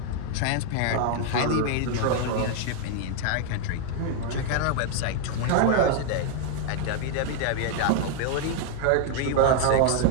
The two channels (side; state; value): both; different; correlation 0.00